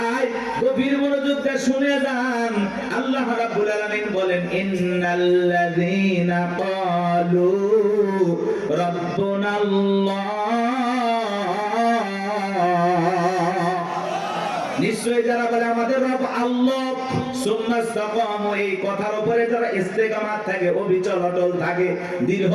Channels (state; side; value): identical; both; correlation 1.00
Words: গভীর মনোযোগ দিয়ে শুনে যান। আল্লাহ রাব্বুল আলামিন বলেন, ইন্নাল্লাযীনা ক্বালু রাব্বুনাল্লাহ, নিশ্চয়ই যারা বলে আমাদের রব আল্লাহ, সুম্মা ইসতাকামু, এই কথার উপরে যারা ইস্তেকামাত থাকে, অবিচল অটল থাকে, দৃঢ়